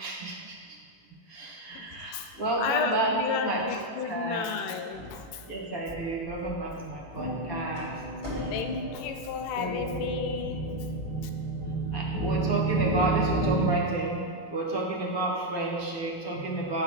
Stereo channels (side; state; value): right; late; 18 ms